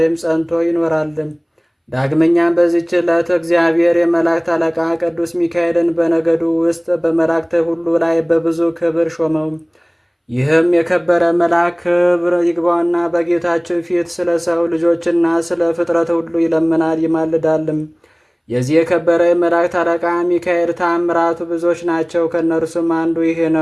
ጸንቶ ይኖራል። ዳግመኛም በዚች ዕለት እግዚአብሔር የመላእክት አለቃ ቅዱስ ሚካኤልን በነገዱ ውስጥ በመላእክት ሁሉ ላይ በብዙ ክብር ሾመው። ይህም የከበረ መልአክ ክብር ይግባውና በጌታችን ፊት ስለ ሰው ልጆችና ስለ ፍጥረት ሁሉ ይለምናል ይማልዳልም። የዚህ የከበረ የመላእክት አለቃ ሚካኤል ተአምራቱ ብዙዎች ናቸው። ከእነርሱም አንዱ ይሄ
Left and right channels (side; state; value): both; identical; correlation 1.00